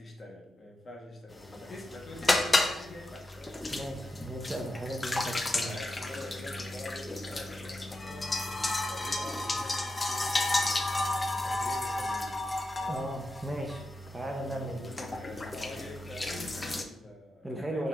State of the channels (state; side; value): normal; both; correlation 0.89